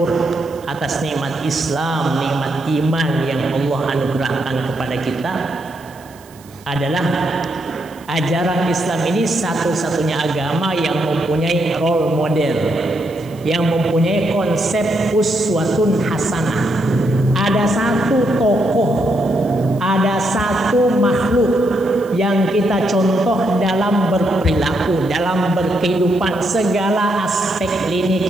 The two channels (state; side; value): noise; right; hiss, 25 dB below the sound